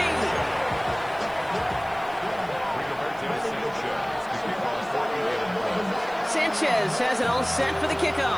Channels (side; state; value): right; noise; hiss, 26 dB below the sound